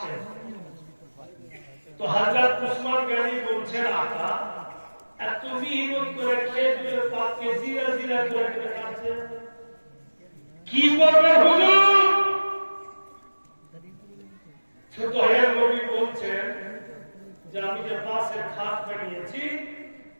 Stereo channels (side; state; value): both; inverted; correlation -1.00